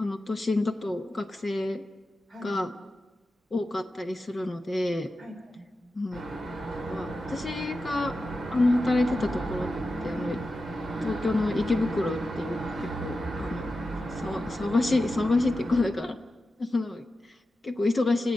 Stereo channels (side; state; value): both; normal; correlation 0.92